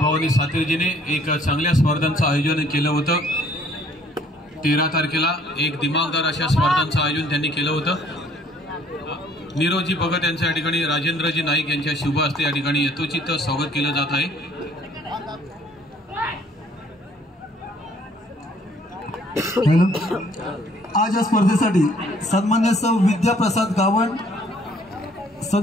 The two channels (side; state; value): both; normal; correlation 0.60